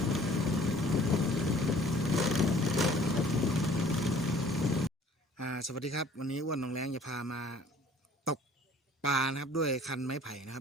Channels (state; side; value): normal; both; correlation 0.52